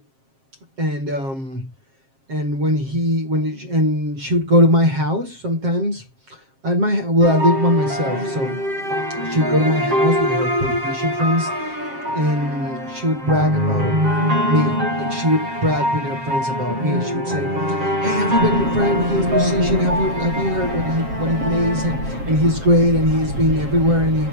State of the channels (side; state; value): left; late; 7.5 ms